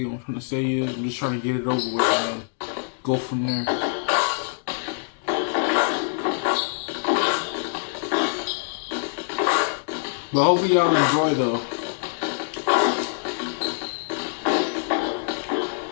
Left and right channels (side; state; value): right; silent; digital silence